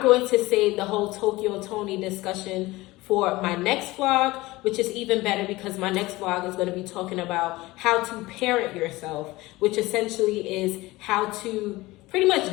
going to save the whole Tokyo Tony discussion for my next vlog, which is even better because my next vlog is going to be talking about how to parent yourself, which essentially is how to pretty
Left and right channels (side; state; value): right; quieter; 19.8 dB